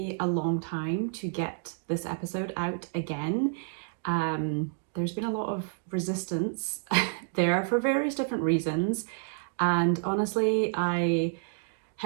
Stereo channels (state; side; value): silent; left; digital silence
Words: a long time to get this episode out again. There's been a lot of resistance there for various different reasons, and honestly I